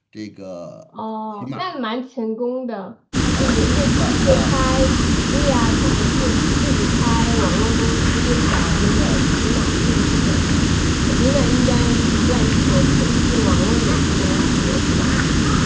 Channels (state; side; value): identical; both; correlation 1.00